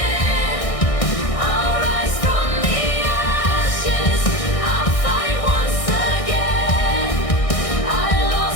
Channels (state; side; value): late; right; 1.6 ms